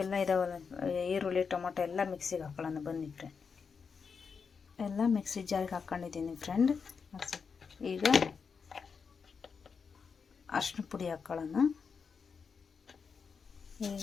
ಇದಾವಲ್ಲ, ಈರುಳ್ಳಿ, ಟೊಮೊಟೊ ಎಲ್ಲ ಮಿಕ್ಸಿಗೆ ಹಾಕೊಳ್ಳೋಣ. ಬನ್ನಿ ಫ್ರೆಂಡ್, ಎಲ್ಲ ಮಿಕ್ಸಿ ಜಾರಿಗೆ ಹಾಕ್ಕೊಂಡಿದ್ದೀನಿ ಫ್ರೆಂಡ್. ಈಗ ಅರಶಿನ ಪುಡಿ ಹಾಕ್ಕೊಳ್ಳೋಣ.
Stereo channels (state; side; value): quieter; right; 5.7 dB